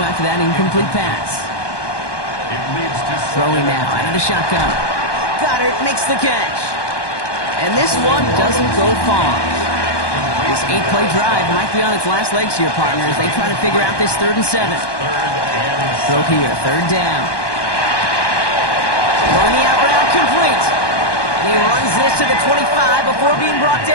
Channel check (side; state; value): right; late; 1.2 ms